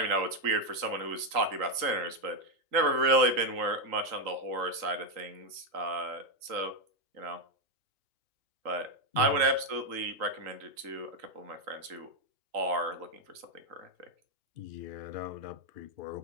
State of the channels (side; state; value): left; late; 3.8 ms